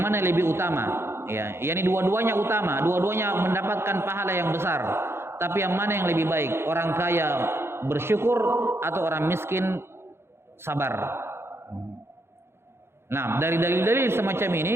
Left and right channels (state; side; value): late; left; 0.12 ms